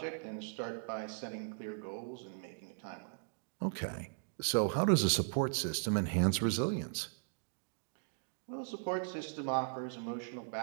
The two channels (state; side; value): silent; left; digital silence